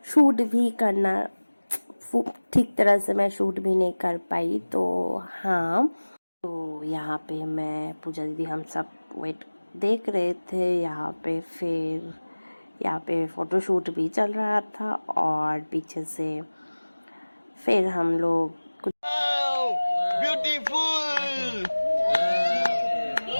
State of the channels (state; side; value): inverted; both; correlation -1.00